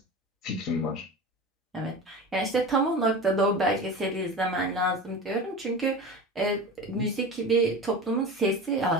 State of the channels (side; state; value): both; normal; correlation 0.31